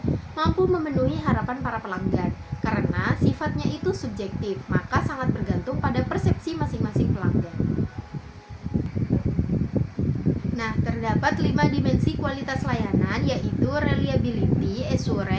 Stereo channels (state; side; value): identical; both; correlation 1.00